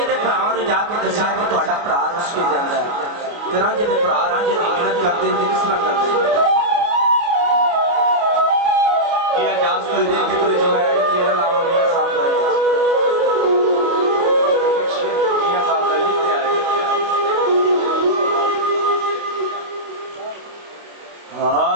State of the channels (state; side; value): late; left; 29 ms